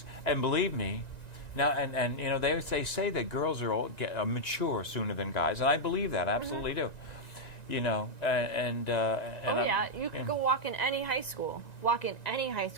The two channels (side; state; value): right; late; 1.9 ms